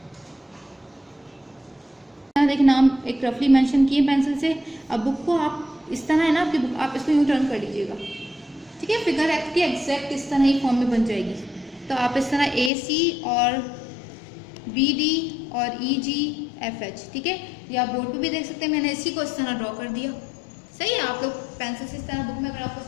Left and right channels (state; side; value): drops out; right; at 12.7 s